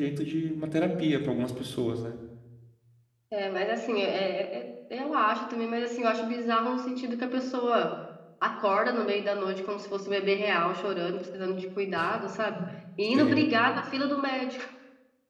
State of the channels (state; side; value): identical; both; correlation 1.00